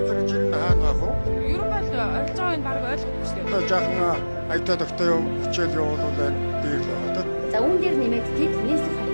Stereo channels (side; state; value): both; inverted; correlation -1.00